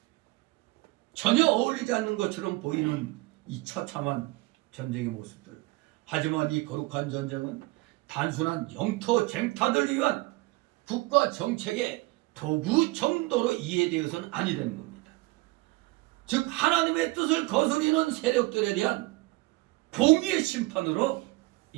전혀 어울리지 않는 것처럼 보이는 이 처참한 전쟁의 모습들. 하지만 이 거룩한 전쟁은 단순한 영토 쟁탈을 위한 국가 정책의 도구 정도로 이해되어서는 아니 되는 겁니다. 즉 하나님의 뜻을 거스리는 세력들에 대한 공의의 심판으로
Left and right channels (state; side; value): quieter; left; 21.8 dB